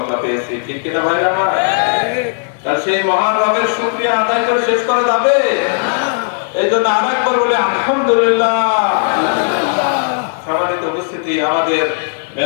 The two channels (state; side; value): silent; right; digital silence